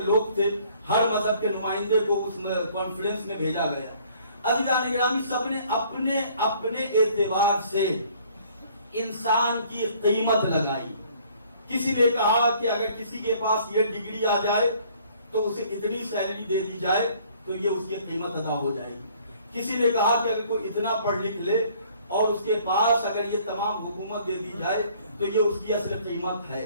لوگ تھے ہر مذہب کے نمائندے کو اس کانفرنس میں بھیجا گیا۔ عزیزان گرامی، سب نے اپنے اپنے اعتبار سے انسان کی قیمت لگائی۔ کسی نے کہا کہ اگر کسی کے پاس یہ ڈگری آ جائے تو اسے اتنی سیلری دے دی جائے تو یہ اس کی قیمت ادا ہو جائے گی۔ کسی نے کہا کہ اگر کوئی اتنا پڑھ لکھ لے اور اس کے پاس اگر یہ تمام حکومت دے دی جائے تو یہ اس کی اصل قیمت ہے۔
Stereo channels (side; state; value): both; inverted; correlation -0.58